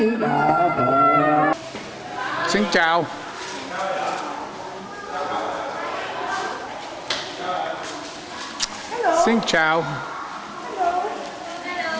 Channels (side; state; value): both; identical; correlation 1.00